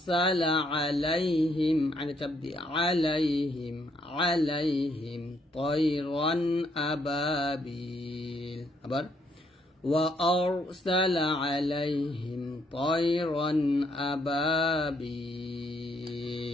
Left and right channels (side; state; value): both; normal; correlation 0.71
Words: عليهم على تبدي عليهم طيرا أبابيل أبر وأرسل عليهم طيرا